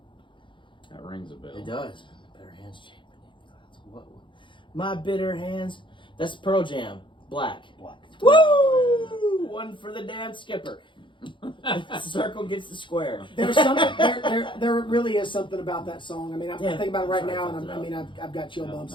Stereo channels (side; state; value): right; late; 0.24 ms